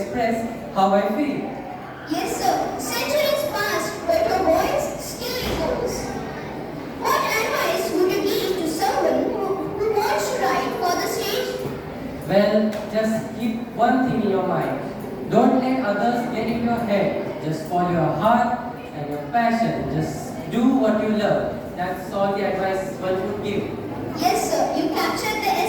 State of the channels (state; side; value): identical; both; correlation 1.00